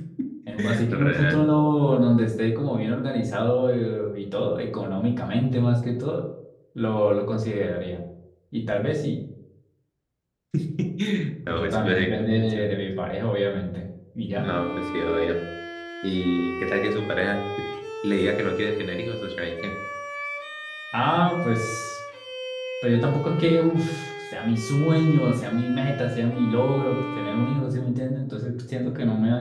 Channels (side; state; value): both; identical; correlation 1.00